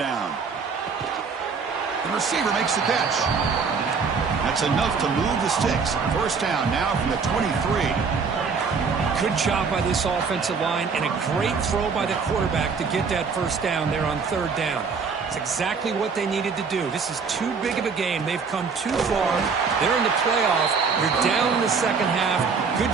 The receiver makes the catch. That's enough to move the sticks. First down now from the 23. Good job by this offensive line and a great throw by the quarterback to get that first down there on 3rd down. It's exactly what they needed to do. This is too big of a game. They've come too far. They're in the playoff. You're down in the second half.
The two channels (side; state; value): left; quieter; 5.3 dB